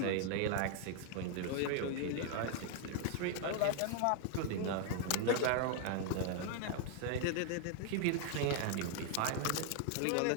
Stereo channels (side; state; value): both; different; correlation 0.00